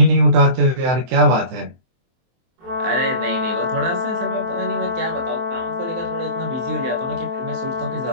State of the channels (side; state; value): left; late; 23 ms